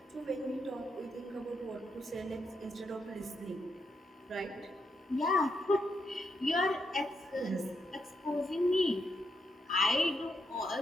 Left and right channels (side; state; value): both; normal; correlation 0.81